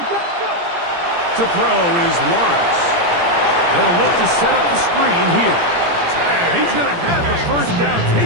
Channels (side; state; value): left; late; 17 ms